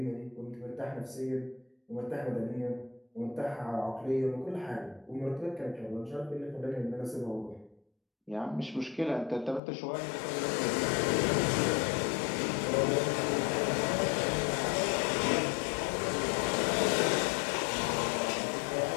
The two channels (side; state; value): right; drops out; at 9.6 s